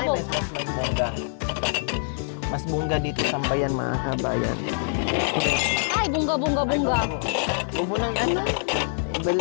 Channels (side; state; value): right; silent; 62 dB below the other